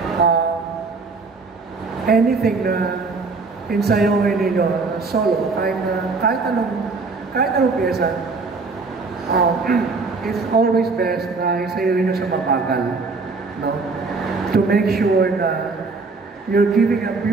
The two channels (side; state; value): left; quieter; 4.1 dB